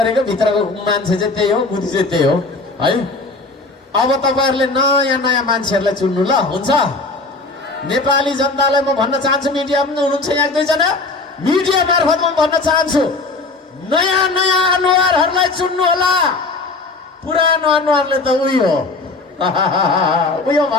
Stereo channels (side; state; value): right; quieter; 3.5 dB